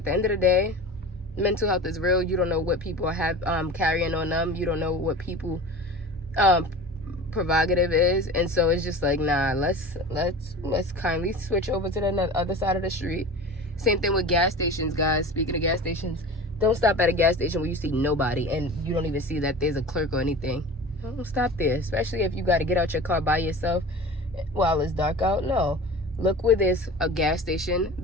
the end of the day, mental health is real. You don't know what people have carrying on them. You don't know what people prerogative is. And so it's just like, nah, let's kindly switch over to the other side of the street. Same thing with gas stations, guys. Speaking of gas stations, don't stop at a gas station where you see nobody and you don't even see that there's a clerk or anything. Don't stop there, especially if you got to get out your car by yourself. while it's dark out. No. Look where there's a gas station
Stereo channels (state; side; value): normal; both; correlation 0.35